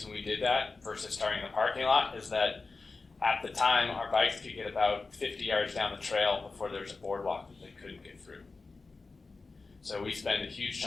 we did that versus starting in the parking lot is that at the time our bikes could get about 50 yards down the trail before there's a boardwalk that they couldn't get through. So we spend a huge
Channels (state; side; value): quieter; right; 3.9 dB